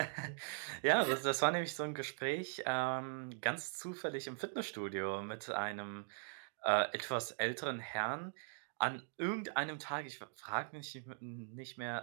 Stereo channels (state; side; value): silent; left; digital silence